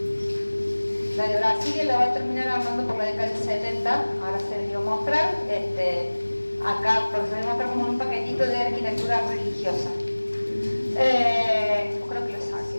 La de Brasilia la va a terminar armando por la década del 70, ahora se les dio a mostrar. Acá, porque se les muestra como un paquetito de arquitectura religiosa. Creo que lo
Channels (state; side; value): inverted; both; correlation -1.00